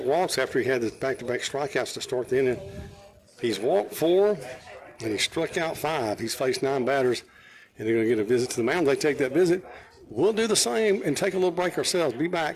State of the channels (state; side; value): identical; both; correlation 1.00